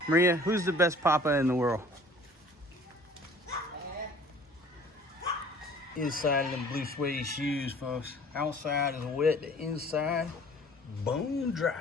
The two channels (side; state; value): both; normal; correlation 0.51